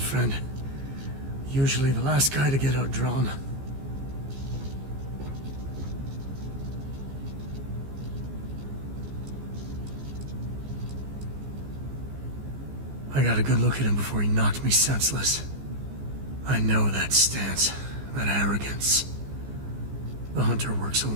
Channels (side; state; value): left; late; 15 ms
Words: Usually the last guy to get outdrawn. I got a good look at him before he knocked me senseless. I know that stance, that arrogance. The hunter works